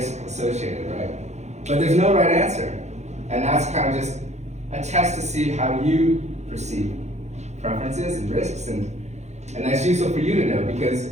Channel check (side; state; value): left; late; 0.33 ms